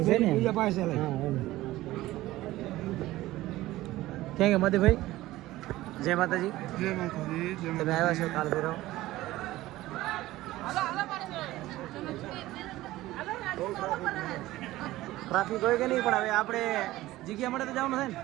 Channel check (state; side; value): quieter; left; 16.8 dB